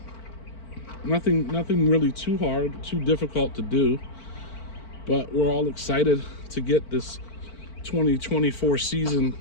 Nothing really too hard, too difficult to do. But we're all excited to get this 2024 season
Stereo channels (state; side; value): late; right; 4.5 ms